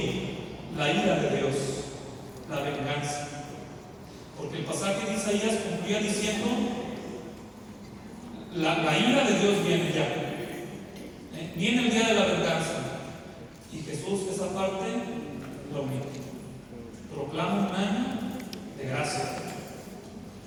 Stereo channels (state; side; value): identical; both; correlation 1.00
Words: la ira de Dios, la venganza. Porque el pasaje de Isaías concluía diciendo, la ira de Dios viene ya. Viene el día de la venganza. Y Jesús esa parte lo omite. Proclama un año de gracia.